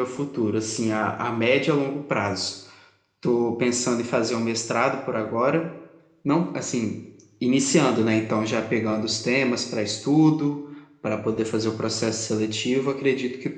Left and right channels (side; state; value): both; identical; correlation 1.00